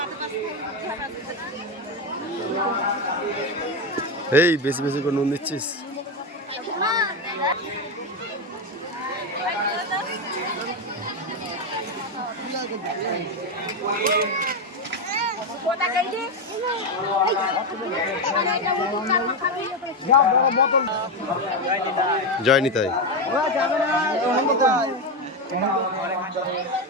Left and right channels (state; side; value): normal; both; correlation 0.10